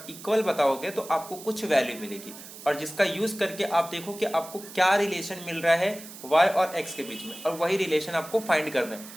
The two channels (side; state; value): right; noise; hiss, 15 dB below the sound